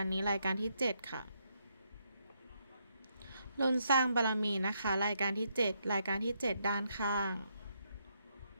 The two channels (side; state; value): both; inverted; correlation -0.77